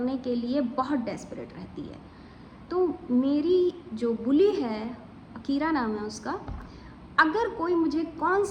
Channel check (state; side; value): identical; both; correlation 1.00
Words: के लिए बहुत डेस्परेट रहती है। तो मेरी जो बुली है, अकीरा नाम है उसका, अगर कोई मुझे